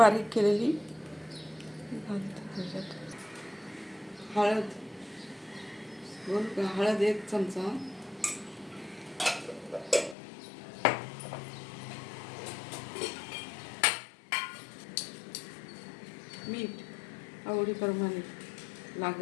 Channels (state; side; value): drops out; right; at 10.2 s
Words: केलेली घालते त्याच्यात. हळद 1 चमचा, मीठ आवडीप्रमाणे